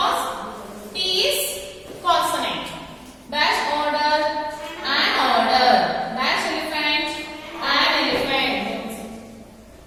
T is consonant. Dash, order. An order. Dash, elephant. An elephant.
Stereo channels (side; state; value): both; identical; correlation 1.00